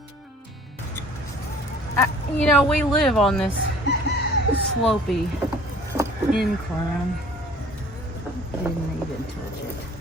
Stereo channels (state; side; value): normal; both; correlation 0.51